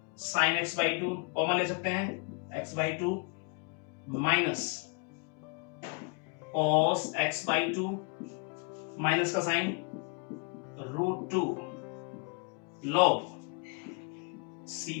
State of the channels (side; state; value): right; quieter; 33.9 dB